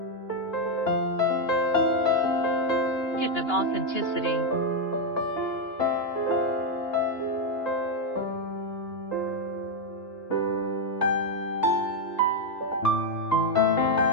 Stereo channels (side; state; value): right; late; 2.9 ms